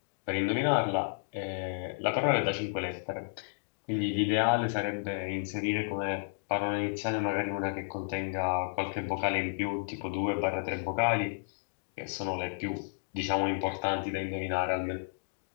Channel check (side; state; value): right; silent; digital silence